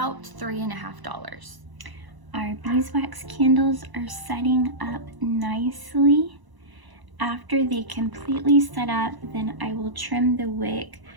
$3.50. Our beeswax candles are setting up nicely. After they completely set up, then I will trim the wick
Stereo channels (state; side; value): late; left; 1.0 ms